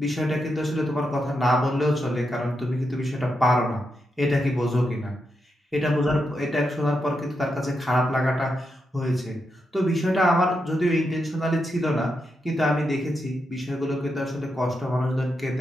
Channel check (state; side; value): normal; both; correlation 0.85